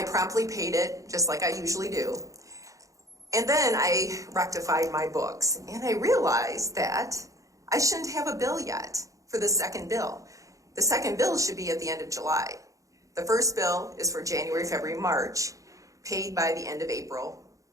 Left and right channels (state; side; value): late; left; 0.16 ms